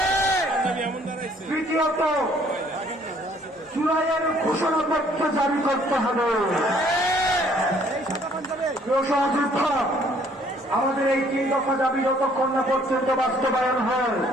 তৃতীয়ত জুলাইয়ের ঘোষণাপত্র জারি করতে হবে। সহযোদ্ধা, আমাদের এই 3 দফা দাবি যতক্ষণ না পর্যন্ত বাস্তবায়ন হয়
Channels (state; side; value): normal; both; correlation 0.61